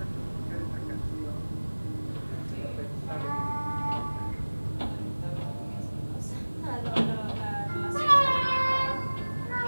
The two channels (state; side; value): inverted; both; correlation -1.00